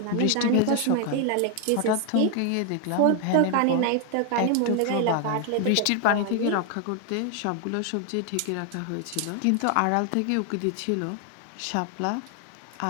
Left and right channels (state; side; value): different; both; correlation 0.00